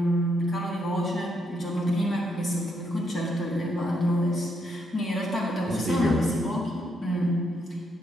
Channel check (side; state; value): both; normal; correlation 0.76